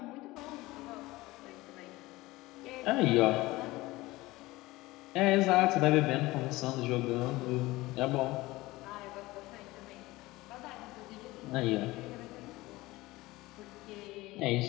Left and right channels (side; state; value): right; quieter; 19.7 dB